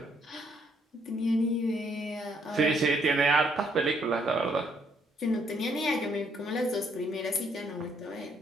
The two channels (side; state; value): both; normal; correlation 0.69